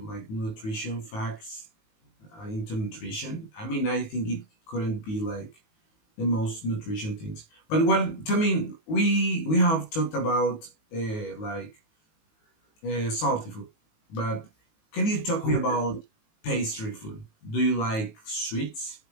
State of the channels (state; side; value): late; right; 19 ms